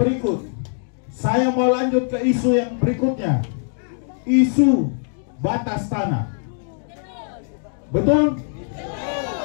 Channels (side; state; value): right; silent; digital silence